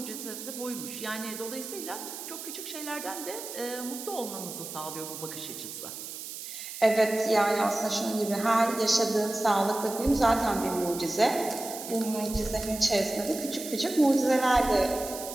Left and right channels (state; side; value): noise; right; hiss, 9 dB below the sound